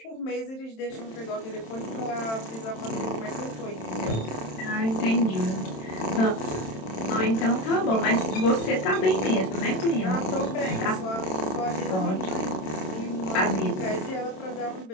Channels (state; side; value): late; right; 27 ms